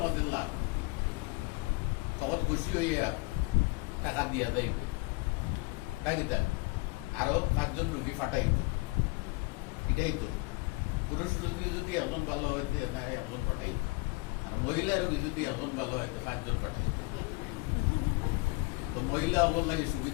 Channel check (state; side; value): quieter; right; 25.6 dB